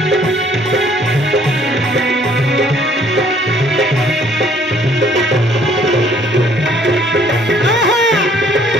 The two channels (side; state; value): both; normal; correlation 0.61